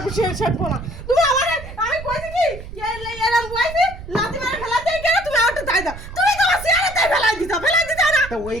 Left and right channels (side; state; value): right; noise; rumble, 13 dB below the sound